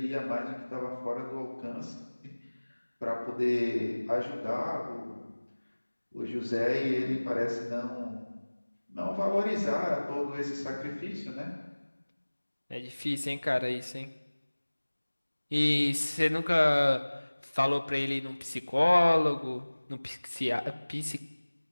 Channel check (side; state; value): both; inverted; correlation -1.00